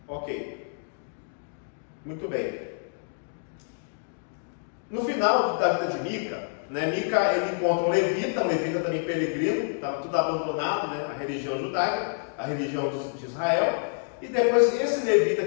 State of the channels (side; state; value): right; silent; digital silence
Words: Ok, muito bem. No final da vida de Mica, né, Mica ele encontra um levita também peregrino, estava tudo abandonado, né, a religião judaica, a religião de Israel, e depois esse levita